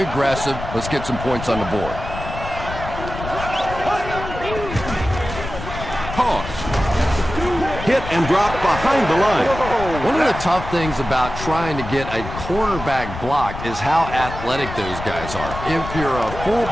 Let's get some points on the board. Toss. Hit and drop behind the line. One of the tough things about trying to get a cornerback blocked is how athletic those guys are. If you're a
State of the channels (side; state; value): left; noise; rumble, 9 dB below the sound